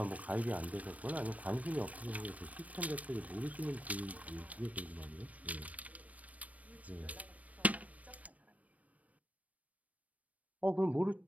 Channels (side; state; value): left; late; 0.069 ms